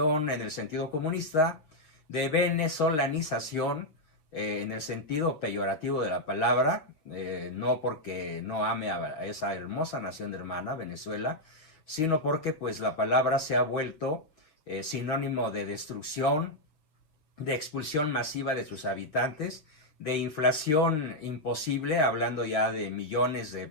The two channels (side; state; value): right; late; 6.5 ms